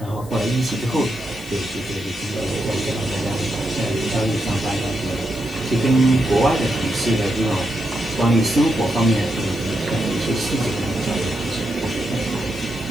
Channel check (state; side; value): noise; left; hiss, 21 dB below the sound